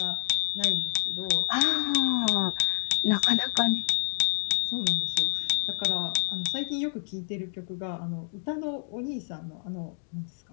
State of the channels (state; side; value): silent; right; digital silence